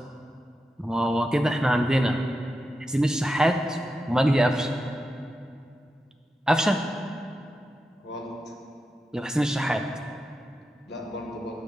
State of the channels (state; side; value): normal; both; correlation 0.88